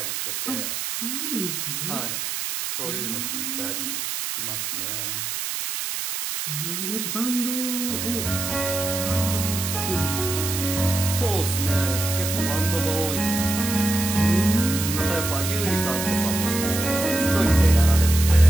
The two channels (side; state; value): right; noise; hiss, 3 dB below the sound